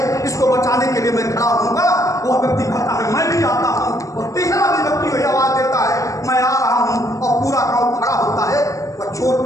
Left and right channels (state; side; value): late; right; 0.16 ms